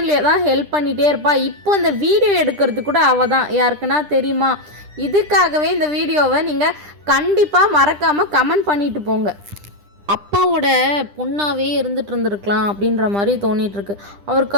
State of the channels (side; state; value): left; late; 10 ms